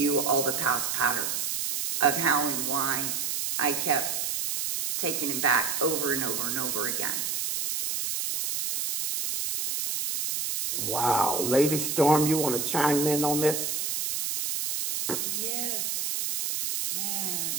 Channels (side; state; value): right; noise; hiss, 1 dB below the sound